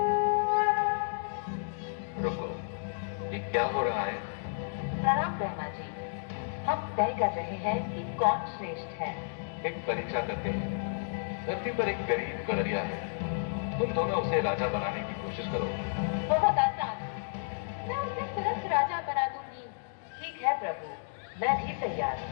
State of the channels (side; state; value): right; silent; digital silence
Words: रुको, ये क्या हो रहा है? प्रणाम ब्रह्मा जी, हम तय कर रहे हैं कि कौन श्रेष्ठ है। एक परीक्षा करते हैं। धरती पर एक गरीब गडरिया है, तुम दोनों उसे राजा बनाने की कोशिश करो। बहुत आसान, मैं उसे तुरंत राजा बना दूंगी। ठीक है प्रभु, मैं भी तैयार